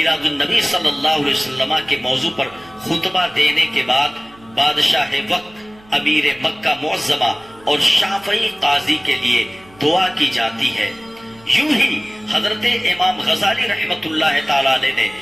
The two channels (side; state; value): right; noise; hum, 26 dB below the sound